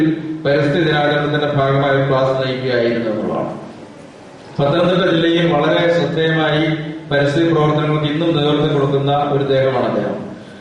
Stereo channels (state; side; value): identical; both; correlation 1.00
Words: പരിസ്ഥിതി ദിനാചരണത്തിന്റെ ഭാഗമായി ക്ലാസ് നയിക്കുകയായിരുന്നു എന്നുള്ളതാണ്. പത്തനംതിട്ട ജില്ലയിൽ വളരെ ശ്രദ്ധേയമായി പരിസ്ഥിതി പ്രവർത്തനങ്ങൾക്ക് ഇന്നും നേതൃത്വം കൊടുക്കുന്ന ഒരു ദേഹമാണ് അദ്ദേഹം.